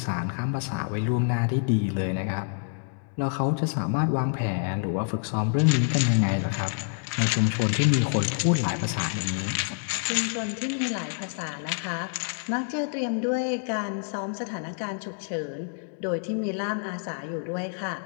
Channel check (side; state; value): right; silent; 60 dB below the other